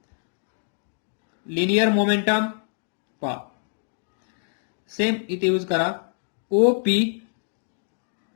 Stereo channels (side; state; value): right; silent; digital silence